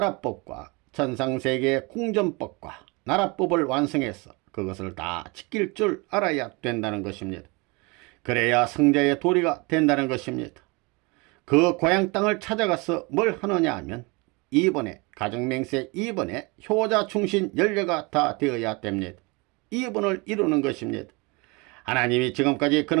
천상세계의 궁전법과 나라법을 완성해서 그것을 다 지킬 줄 알아야 된다는 것입니다. 그래야 성자의 도리가 된다는 것입니다. 그 고향 땅을 찾아가서 뭘 하느냐 하면 이번에 가정맹세 2번에 효자 충신 연례가 다 되어야 됩니다. 2번을 이루는 것입니다. 하나님이 지금까지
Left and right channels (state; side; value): quieter; left; 27.4 dB